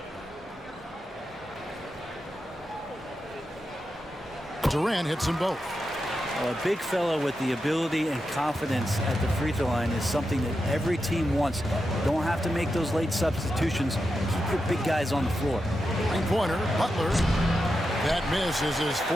Durant hits them both. Well, a big fellow with the ability and confidence at the free throw line is something that every team wants. Don't have to make those late substitutions. Keep your big guys on the floor. Three-pointer, Butler. That miss is his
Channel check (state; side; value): normal; both; correlation 0.88